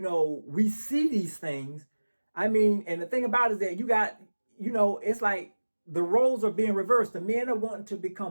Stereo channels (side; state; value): both; inverted; correlation -1.00